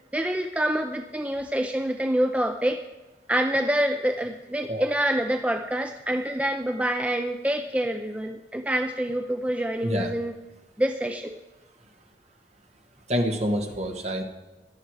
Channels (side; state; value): both; normal; correlation 0.82